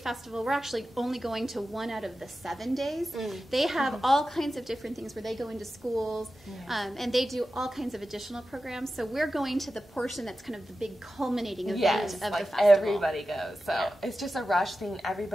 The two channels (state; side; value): normal; both; correlation 0.93